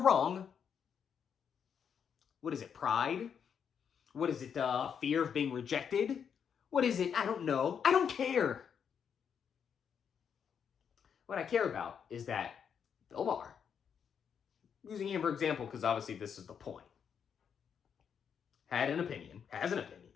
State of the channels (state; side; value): quieter; right; 7.4 dB